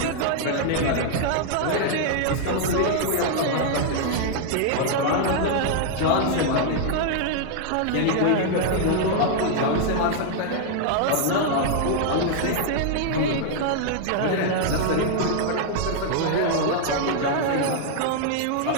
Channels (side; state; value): both; different; correlation 0.00